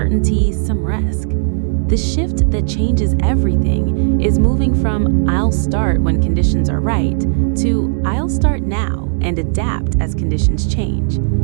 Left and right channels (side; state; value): left; silent; digital silence